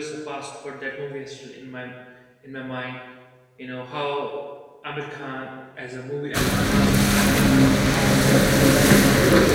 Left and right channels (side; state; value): both; identical; correlation 1.00